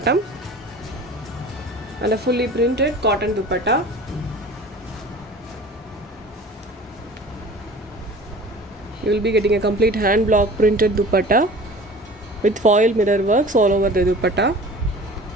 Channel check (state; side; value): normal; both; correlation 0.42